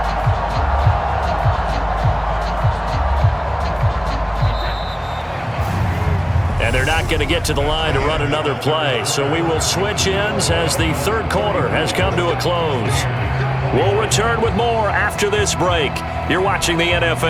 And they're not going to get to the line to run another play. So we will switch ends as the third quarter has come to a close. We'll return with more after this break. You're watching the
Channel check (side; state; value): both; identical; correlation 1.00